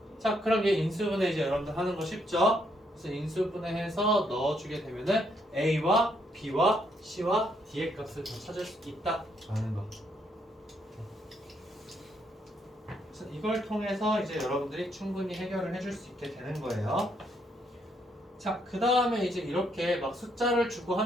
자, 그럼 얘 인수분해 이제 여러분들 하는 거 쉽죠? 그래서 인수분해해서 넣어주게 되면은 a와 b와 c와 d의 값을 더 찾을 수 있다 라는 거. 그래서 이걸 통해서 이제 여러분들이 충분히 해결을 해줄 수 있게 되는 거예요. 자, 그 다음에 이제 이렇게 막 숫자를 주고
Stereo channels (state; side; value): normal; both; correlation 0.73